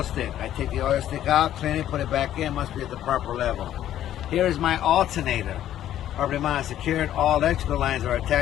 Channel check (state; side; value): quieter; right; 11.9 dB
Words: stick. I take the oil stick out, clean it, put it back in, must be at the proper level. Here is my alternator. Properly mounted, secured, all electrical lines are